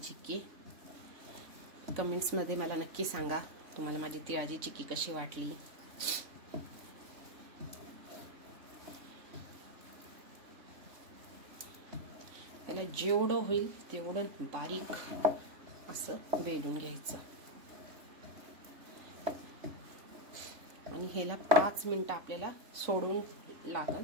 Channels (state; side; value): late; left; 3.5 ms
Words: कमेंट्स मध्ये मला नक्की सांगा तुम्हाला माझी तिळाची चिक्की कशी वाटली। त्याला जेवढं होईल तेवढं बारीक असं वेलून घ्यायचं आणि ह्याला 5 मिनिटं आपल्याला सोडून